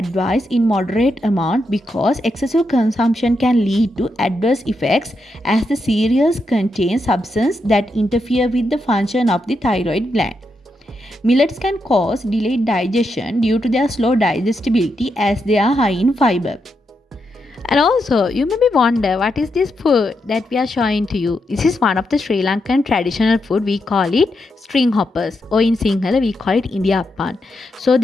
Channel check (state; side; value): normal; both; correlation 0.83